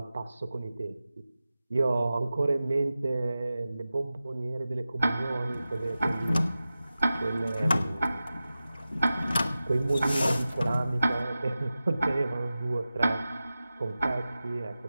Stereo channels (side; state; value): both; inverted; correlation -0.95